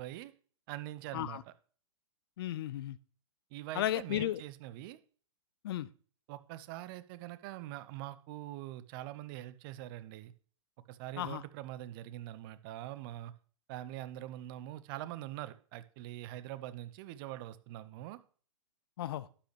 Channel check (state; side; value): normal; both; correlation -0.11